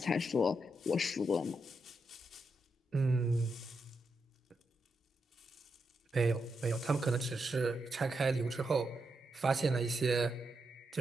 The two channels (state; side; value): normal; both; correlation 0.84